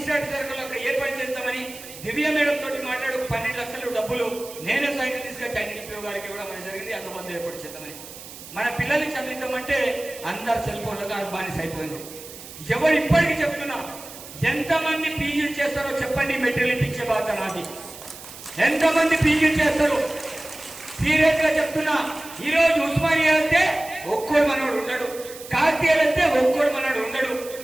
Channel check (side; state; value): right; noise; hiss, 15 dB below the sound